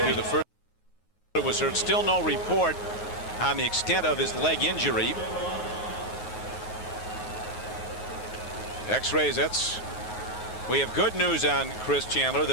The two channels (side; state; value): right; late; 9.4 ms